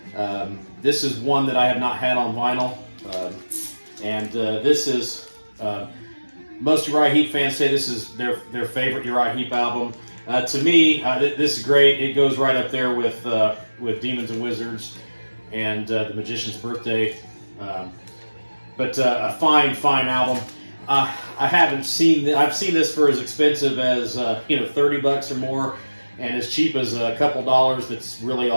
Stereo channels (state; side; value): inverted; both; correlation -1.00